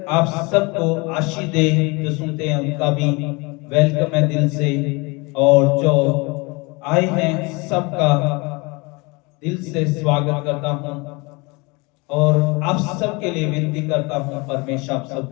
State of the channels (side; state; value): right; quieter; 27.1 dB